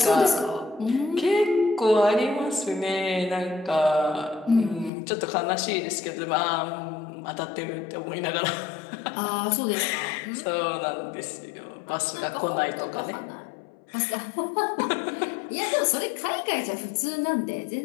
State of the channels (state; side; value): drops out; right; at 4.9 s